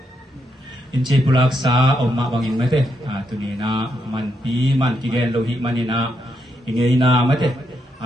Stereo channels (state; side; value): normal; both; correlation 0.80